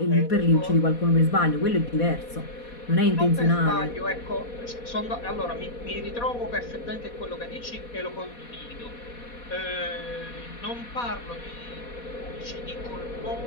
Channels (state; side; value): late; right; 4.2 ms